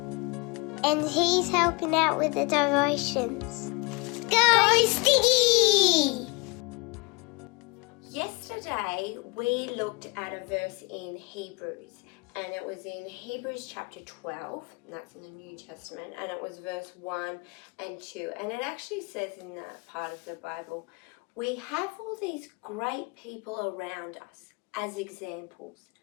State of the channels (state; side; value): quieter; right; 28.8 dB